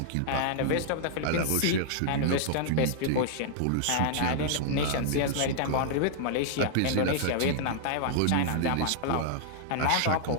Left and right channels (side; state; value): both; different; correlation -0.01